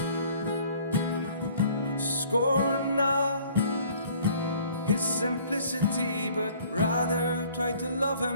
Scorn not his simplicity, but rather try to love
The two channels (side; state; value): both; inverted; correlation -0.55